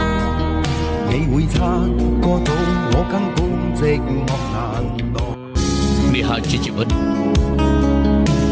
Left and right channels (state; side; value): identical; both; correlation 1.00